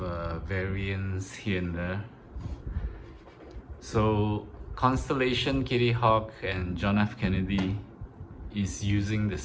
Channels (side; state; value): both; identical; correlation 1.00